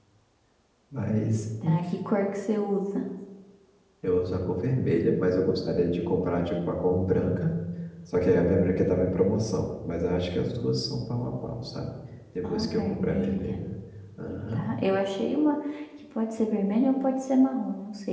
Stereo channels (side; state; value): both; identical; correlation 1.00